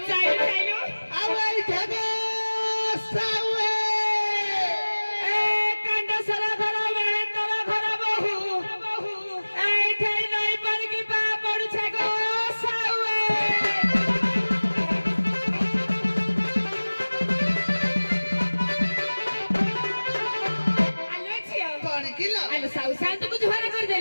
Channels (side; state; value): both; inverted; correlation -1.00